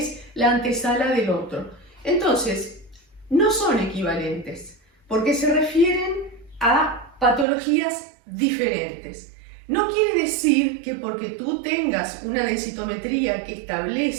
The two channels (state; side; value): drops out; left; at 7.5 s